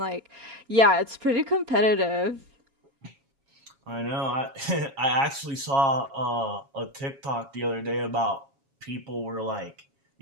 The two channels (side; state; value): left; late; 7.3 ms